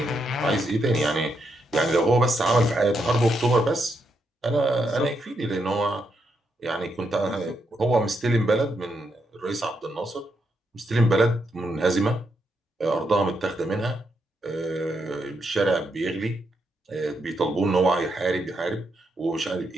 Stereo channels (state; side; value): normal; both; correlation 0.80